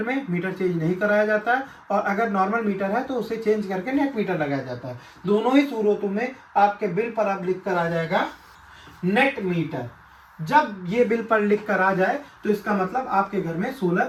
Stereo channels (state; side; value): identical; both; correlation 1.00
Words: में मीटर चेंज नहीं कराया जाता है, और अगर नॉर्मल मीटर है तो उसे चेंज करके नेट मीटर लगाया जाता है। दोनों ही सूरतों में आपके बिल पर अब लिख कर आ जाएगा नेट मीटर। जब ये बिल पर लिख कर आ जाए तो इसका मतलब आपके घर में